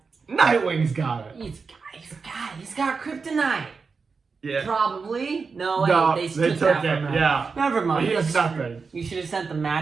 Nightwing's got it. He's got kryptonite. Yeah. Probably. No, they took that from it. him. Yeah. Never mind. He has nothing. You should have sent the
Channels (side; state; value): left; quieter; 4.9 dB